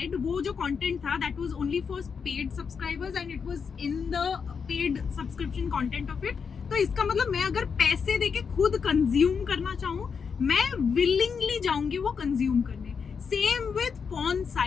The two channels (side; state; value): right; quieter; 6.1 dB